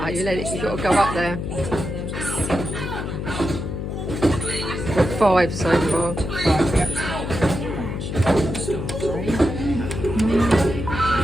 you let it, you've got to go up there. Got 5 so far.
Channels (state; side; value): noise; left; hum, 4 dB below the sound